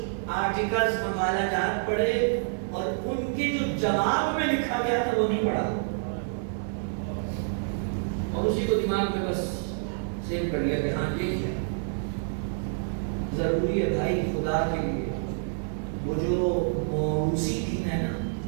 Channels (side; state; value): left; silent; 56 dB below the other